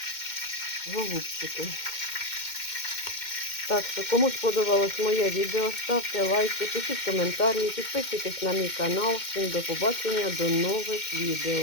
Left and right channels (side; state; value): right; late; 2.1 ms